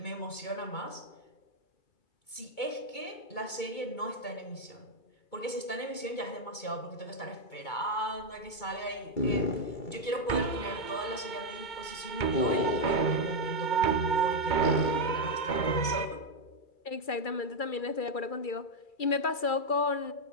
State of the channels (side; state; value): right; late; 2.2 ms